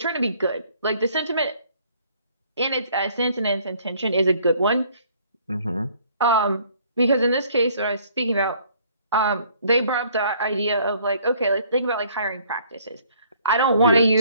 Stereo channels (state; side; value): inverted; both; correlation -0.60